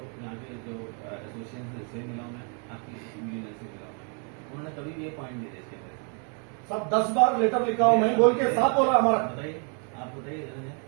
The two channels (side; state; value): left; quieter; 39.6 dB